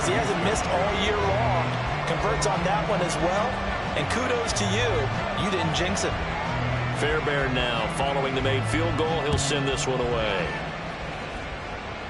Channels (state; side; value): identical; both; correlation 1.00